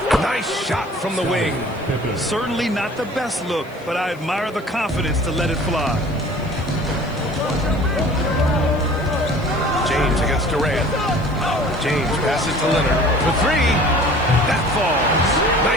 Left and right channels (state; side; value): noise; left; hiss, 28 dB below the sound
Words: Nice shot from the wing. Certainly not the best look, but I admire the confidence to let it fly. James against Durant. James passes to Leonard for three. That falls.